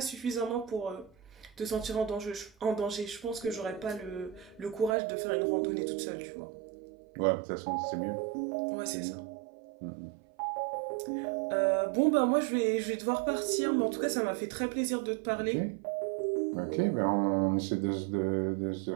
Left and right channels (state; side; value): drops out; left; at 5.0 s